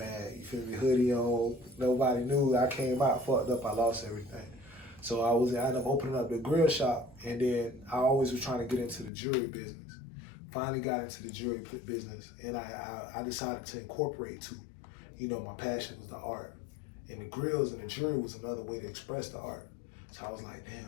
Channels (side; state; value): right; drops out; at 9.1 s